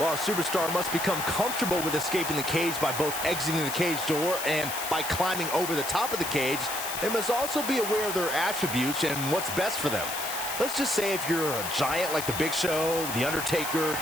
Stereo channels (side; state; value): left; noise; hiss, 6 dB below the sound